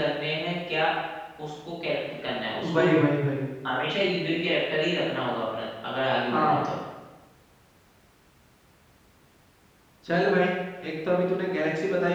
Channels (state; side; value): identical; both; correlation 1.00